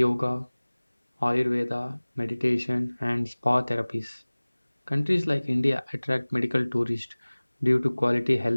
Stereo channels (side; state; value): both; inverted; correlation -1.00